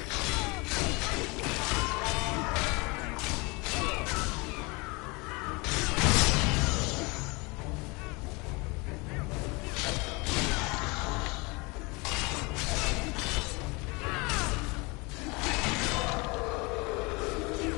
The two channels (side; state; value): right; quieter; 27.2 dB